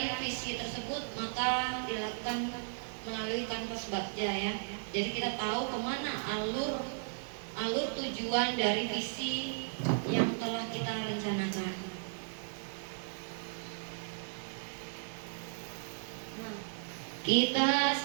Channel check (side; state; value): left; silent; digital silence